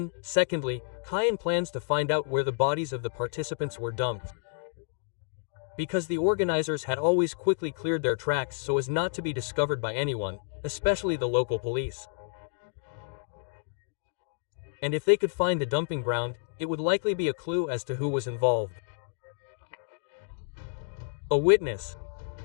secondly, Kaien plans to find out where the bodies of the participants were dumped. Because the organizers had always quickly cleared their tracks so as not to be discovered by anyone, especially the local police. And if they could find the dumping ground, it would likely be a clue as to who was involved. A witness.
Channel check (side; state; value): right; silent; digital silence